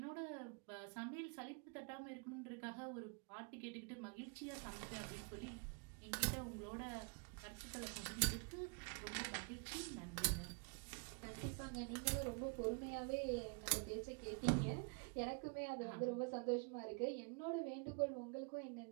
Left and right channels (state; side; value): quieter; left; 36.0 dB